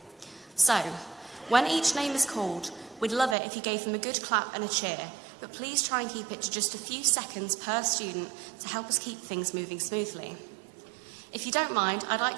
So, when each name is called, we'd love it if you gave them a good clap and a cheer, but please try and keep it to just a few seconds per student to help us keep things moving smoothly. If you don't mind, I'd like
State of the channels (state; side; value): drops out; left; at 3.4 s